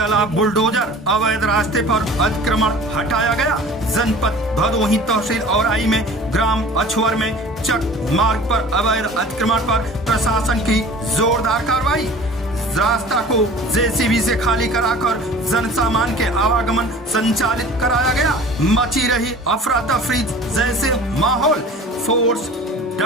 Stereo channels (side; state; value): both; normal; correlation 0.43